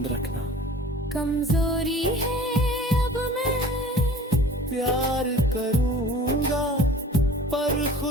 रखना कमजोरी है। अब मैं प्यार करूंगा, पर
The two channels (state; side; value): normal; both; correlation 0.45